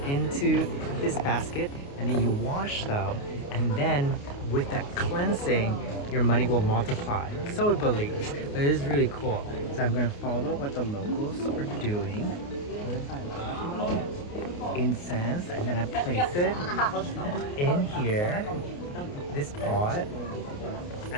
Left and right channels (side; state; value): right; late; 29 ms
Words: into this basket and then you wash them, and then with that cleansing, your money will multiply. So it believes. But it is really cool. So I'm going to follow what the locals are doing. Incense, and then I place it in here, this pot,